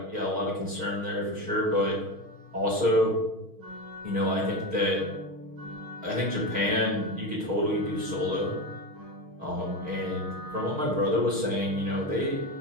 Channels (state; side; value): late; left; 6.4 ms